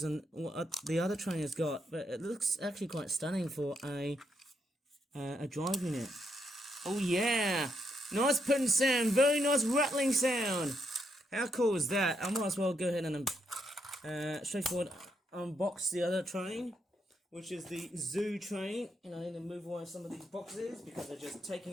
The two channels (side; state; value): both; normal; correlation 0.78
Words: and what the other train has got, but it looks actually quite stunning for a drive unit. Oh yeah! Nice putting sound, very nice rattling sound! How cool is that? I might as well go ahead and straightforward unbox the other train, which is the zoo train, and I need to move away some of these boxes because they're just